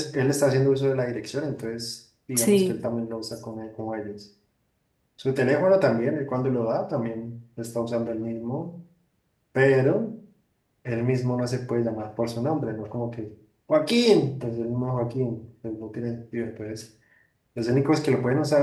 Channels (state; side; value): identical; both; correlation 1.00